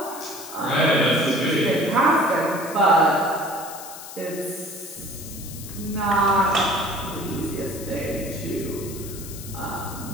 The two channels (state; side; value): noise; left; hiss, 13 dB below the sound